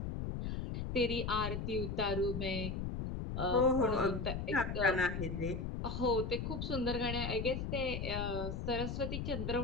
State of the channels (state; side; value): noise; left; rumble, 3 dB below the sound